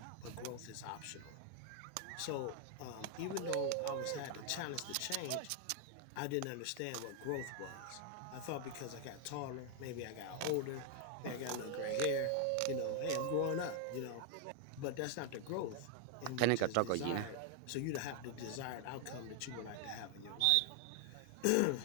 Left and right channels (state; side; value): different; both; correlation 0.00